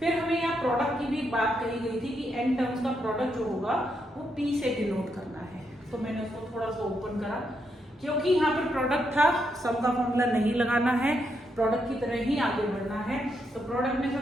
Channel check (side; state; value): both; normal; correlation 0.80